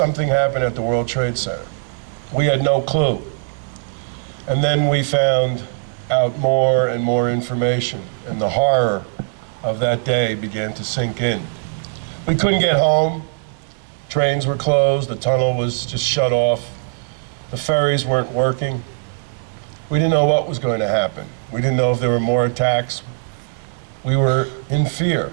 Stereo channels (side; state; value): left; silent; 63 dB below the other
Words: happened at the World Trade Center. We had no clue. And then we found out more and more information, and the horror of that day began to sink in. We couldn't get home. Trains were closed. The tunnel was just shut off. The ferries weren't working. We didn't know what was going to happen. We didn't know if there were more attacks. We were in fear.